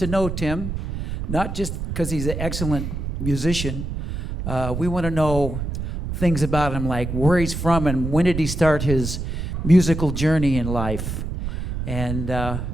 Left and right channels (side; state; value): right; noise; rumble, 4 dB below the sound